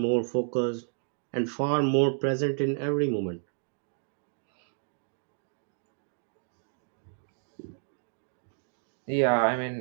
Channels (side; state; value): left; silent; digital silence